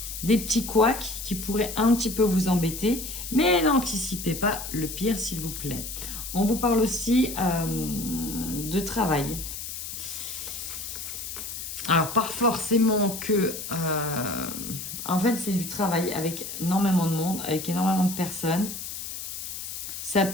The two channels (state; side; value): noise; left; hiss, 7 dB below the sound